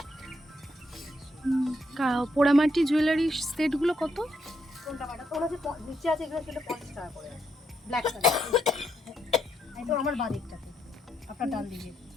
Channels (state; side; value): normal; both; correlation 0.77